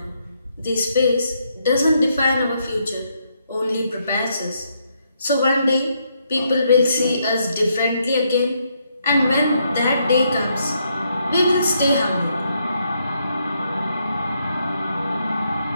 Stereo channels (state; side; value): inverted; both; correlation -0.76